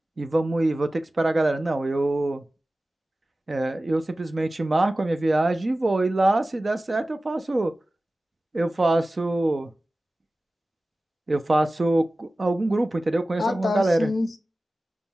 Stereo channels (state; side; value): normal; both; correlation 0.96